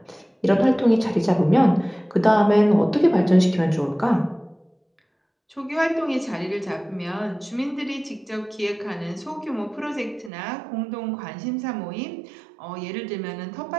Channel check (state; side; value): drops out; left; at 10.3 s